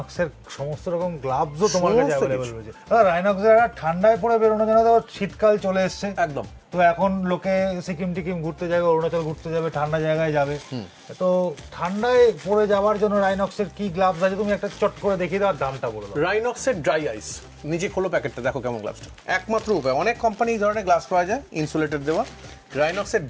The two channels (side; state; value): both; identical; correlation 1.00